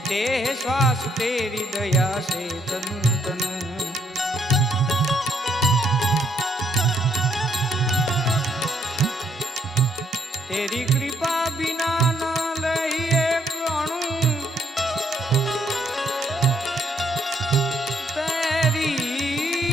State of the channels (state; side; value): normal; both; correlation 0.71